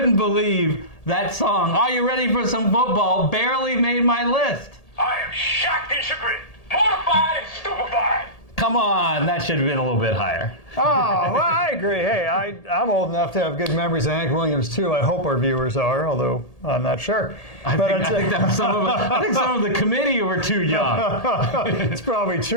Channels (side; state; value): right; late; 1.8 ms